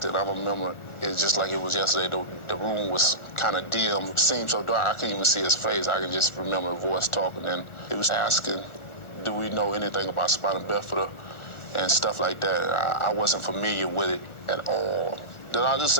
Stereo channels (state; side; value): late; right; 1.4 ms